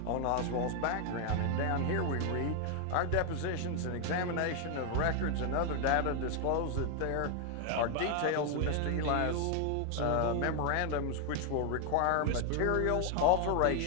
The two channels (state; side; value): different; both; correlation 0.01